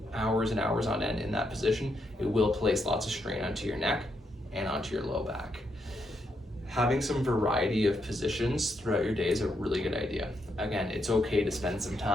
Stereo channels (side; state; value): both; normal; correlation 0.79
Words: hours and hours on end in that position, it will place lots of strain onto your neck and onto your low back. Having some variety of positions throughout your day is a really good idea. Again, it's okay to spend some